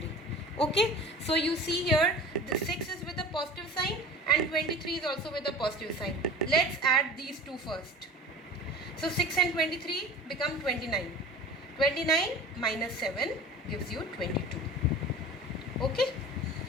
Okay. So you see here the 6 is with a positive sign and 23 is also with a positive sign. Let's add these two first. So 6 and 23 become 29. 29 minus 7 gives you 22. Okay.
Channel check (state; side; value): normal; both; correlation 0.38